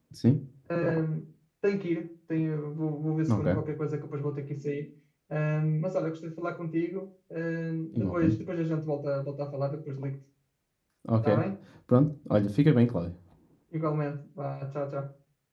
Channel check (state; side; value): identical; both; correlation 1.00